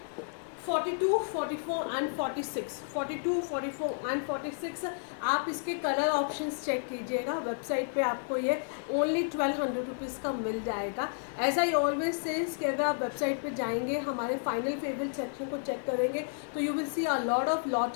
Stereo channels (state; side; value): silent; right; digital silence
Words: 42, 44 and 46। 42, 44 and 46 आप इसके कलर ऑप्शंस चेक कीजिएगा, website पे आपको ये ओनली 1200 रुपीज़ का मिल जाएगा। एज आई ऑलवेज सेज कि अगर आप वेबसाइट पे जाएंगे, हमारे फाइनल फेवरेट सेक्शन को चेक करेंगे तो you will see a lot of